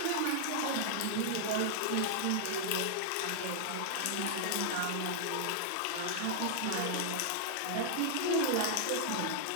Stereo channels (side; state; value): both; different; correlation -0.01